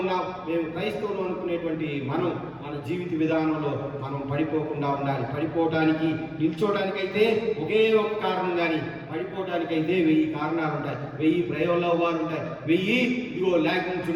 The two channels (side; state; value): both; identical; correlation 1.00